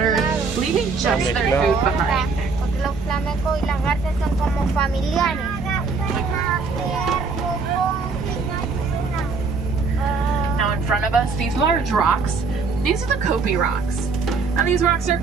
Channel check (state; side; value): quieter; left; 4.6 dB